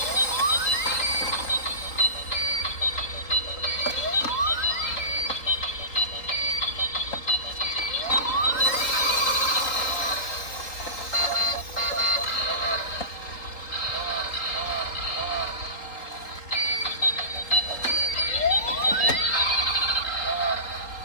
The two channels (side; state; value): right; late; 3.8 ms